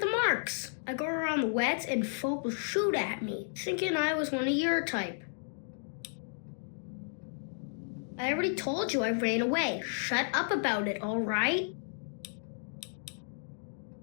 marks. I go around the wets and folk will shoot at me, thinking I was one of your type. I already told you I ran away. Shut up about it, alright?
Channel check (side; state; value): right; silent; digital silence